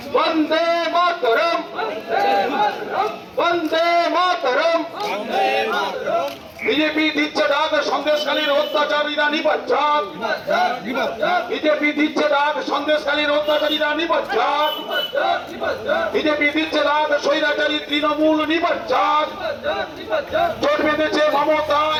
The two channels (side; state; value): both; identical; correlation 1.00